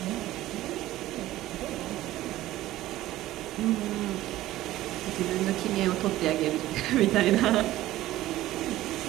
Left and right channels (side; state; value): left; quieter; 15.4 dB